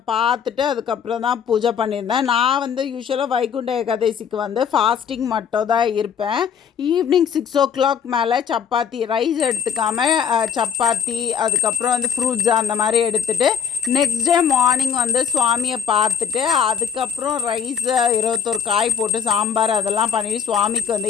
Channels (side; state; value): right; quieter; 7.4 dB